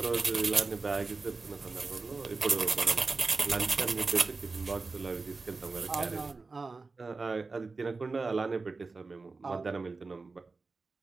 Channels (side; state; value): left; quieter; 4.0 dB